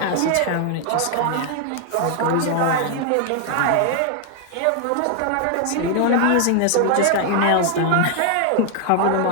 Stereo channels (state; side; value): different; both; correlation 0.00